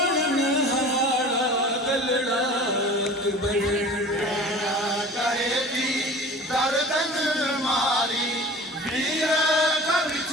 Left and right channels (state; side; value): normal; both; correlation 0.41